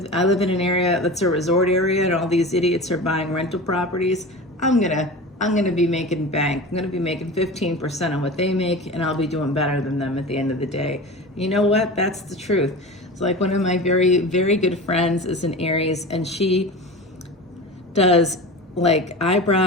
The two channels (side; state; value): both; normal; correlation 0.31